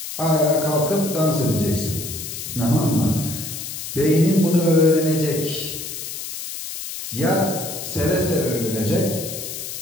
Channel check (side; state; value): left; noise; hiss, 8 dB below the sound